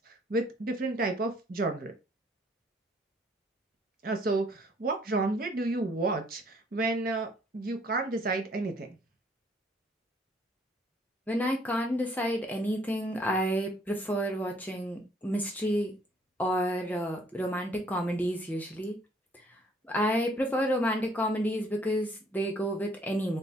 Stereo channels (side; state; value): both; normal; correlation 0.63